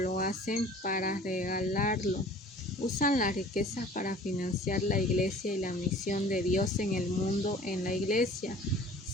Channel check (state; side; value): normal; both; correlation 0.47